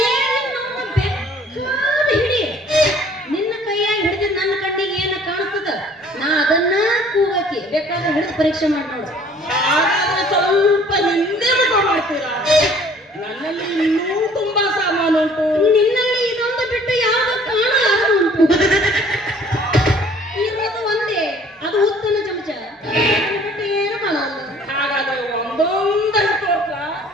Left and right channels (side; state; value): both; normal; correlation 0.54